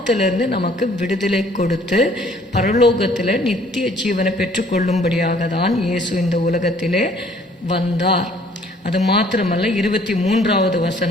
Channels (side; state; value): both; normal; correlation 0.58